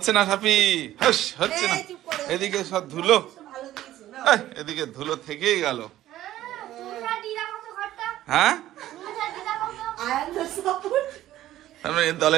না, সাফি হচ্ছে না। এদিকে সব ধুলো, এদিকে ধুলো থেকেই গেল। হ্যাঁ,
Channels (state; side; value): quieter; left; 13.9 dB